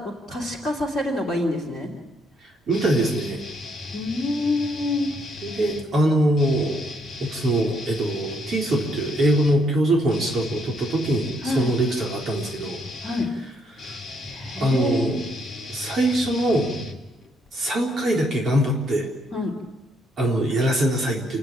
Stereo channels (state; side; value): normal; both; correlation 0.72